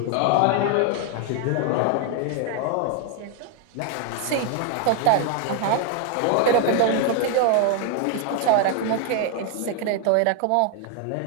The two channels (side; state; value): both; different; correlation 0.00